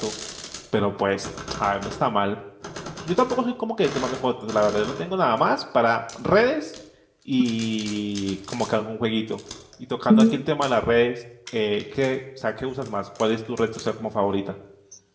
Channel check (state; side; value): identical; both; correlation 1.00